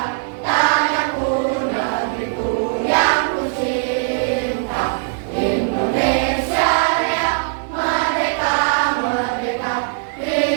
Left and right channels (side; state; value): left; silent; 64 dB below the other